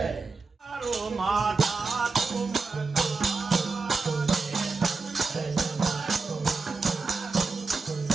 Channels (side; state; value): left; quieter; 4.2 dB